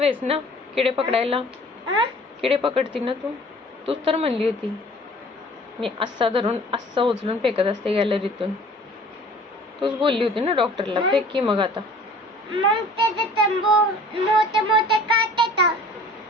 आहेस ना किडे पकडायला? किडे पकडती ना तूच तर म्हणली होती मी असा धरून असा उचलून फेकत असते गॅलरीतून. तूच बोलली होती ना डॉक्टरला. फेक की मग आता. मग मोठे मोठे काटे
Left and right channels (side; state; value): both; normal; correlation 0.49